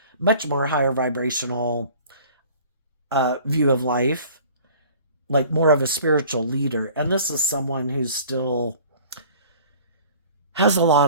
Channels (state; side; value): inverted; both; correlation -0.48